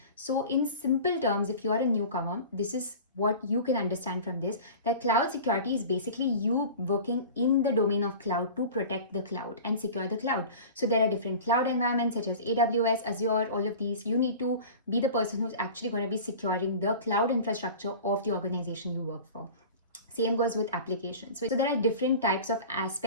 So in simple terms, if you are a newcomer, this is what you can understand from this, that cloud security is basically you working in the domain of cloud to protect the cloud and secure the cloud. So there are different cloud environments such as AWS, Azure, all of these. You need to be the person who's actually going to be securing the cloud infrastructure of the organization you work for. Same goes with applications. So there are different types of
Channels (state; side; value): inverted; both; correlation -0.38